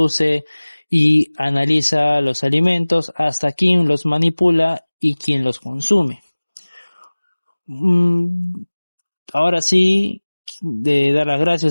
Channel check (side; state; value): both; inverted; correlation -1.00